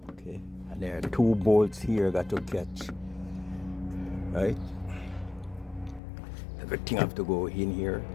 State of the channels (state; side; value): drops out; right; at 6.0 s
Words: Okay, and there are 2 bolts here got to catch. Right? Everything have to go in here